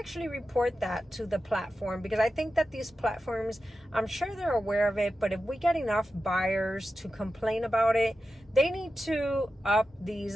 report that to the platform, because I think that these platforms, I'm sure they're aware of it, but if we get enough buyers to complain about it, they need to up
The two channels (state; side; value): normal; both; correlation 0.92